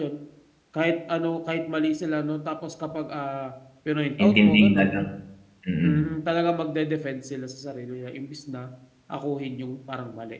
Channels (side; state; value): both; identical; correlation 1.00